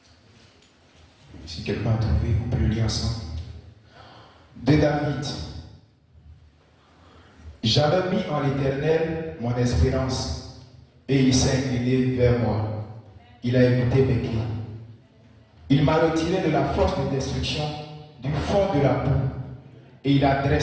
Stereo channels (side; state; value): both; identical; correlation 1.00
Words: Si quelqu'un a trouvé, on peut le lire ensemble. De David. J'avais mis en l'Éternel mon espérance, et il s'est incliné vers moi. Il a écouté mes cris. Il m'a retiré de la force de destruction, du fond de la boue, et il a